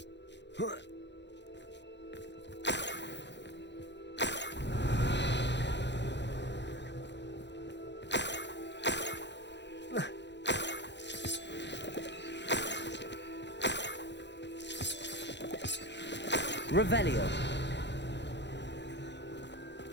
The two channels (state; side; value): late; right; 0.51 ms